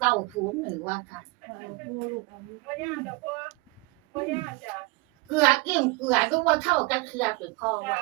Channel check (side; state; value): left; quieter; 25.6 dB